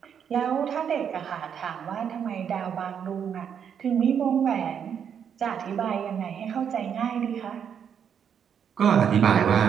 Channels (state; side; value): quieter; left; 7.9 dB